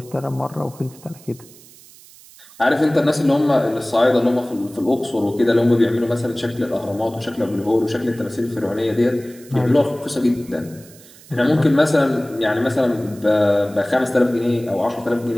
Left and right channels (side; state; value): right; noise; hiss, 23 dB below the sound